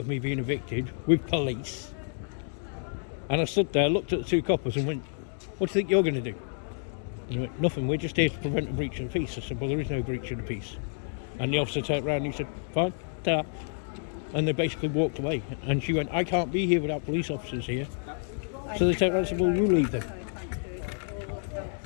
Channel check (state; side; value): silent; right; 58 dB below the other